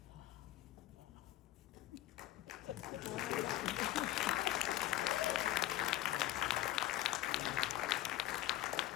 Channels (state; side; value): quieter; right; 14.8 dB